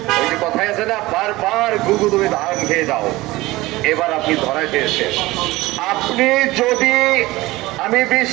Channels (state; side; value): quieter; left; 19.3 dB